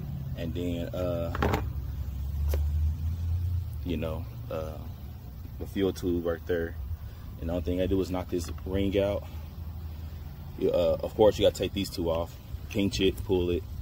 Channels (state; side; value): identical; both; correlation 1.00